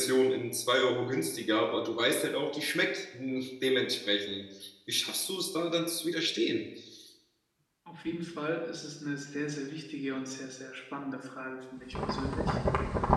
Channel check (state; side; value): identical; both; correlation 1.00